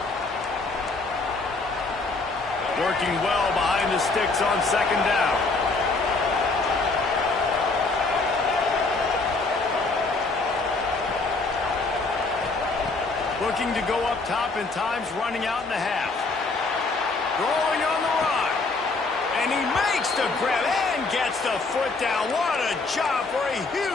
Working well behind the sticks on second down. Looking to go up top in times, running out in the half. Rolling on the run. And he makes the grab and gets the foot down. What a job for a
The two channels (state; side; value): quieter; right; 3.7 dB